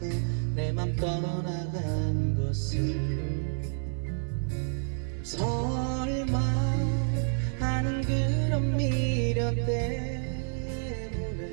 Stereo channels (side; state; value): left; silent; 57 dB below the other